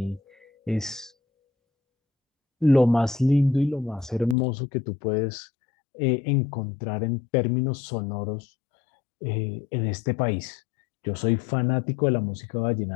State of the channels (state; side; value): drops out; right; at 4.4 s